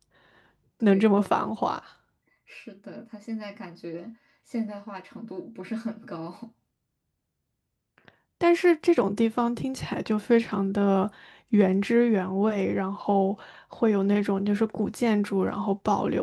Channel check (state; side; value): identical; both; correlation 1.00